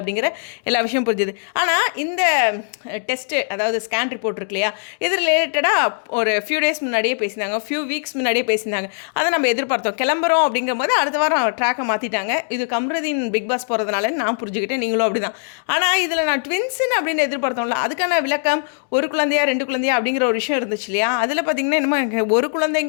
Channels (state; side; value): silent; right; digital silence